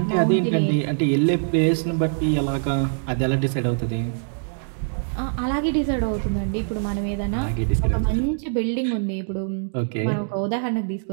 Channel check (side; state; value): left; silent; digital silence